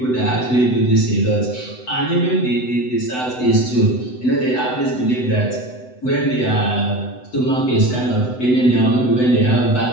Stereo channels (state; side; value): late; right; 7.9 ms